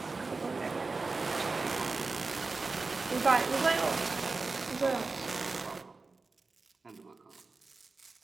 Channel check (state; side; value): quieter; left; 3.9 dB